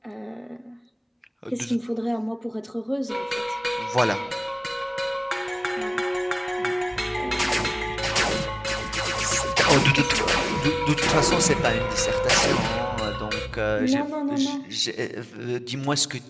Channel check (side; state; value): both; identical; correlation 1.00